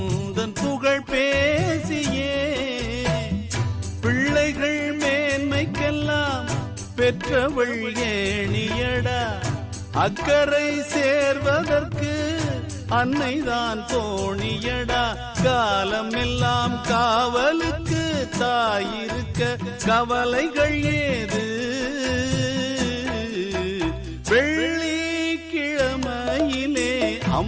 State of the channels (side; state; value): both; identical; correlation 1.00